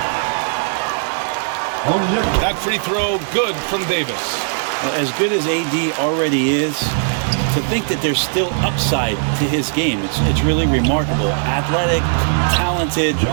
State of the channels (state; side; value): silent; left; digital silence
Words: That free throw good from Davis. As good as AD already is, to think that there's still upside to his game, it's really remarkable. Athletic, talented,